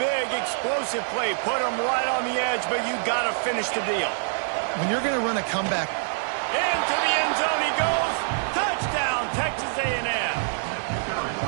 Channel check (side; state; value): left; silent; digital silence